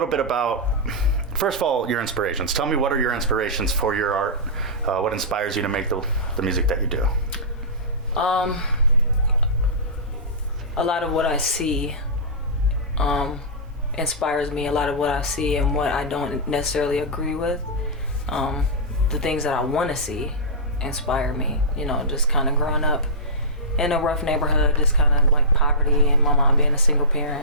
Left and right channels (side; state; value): both; normal; correlation -0.17